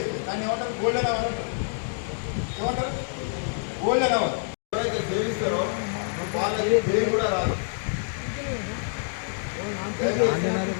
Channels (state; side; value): silent; right; digital silence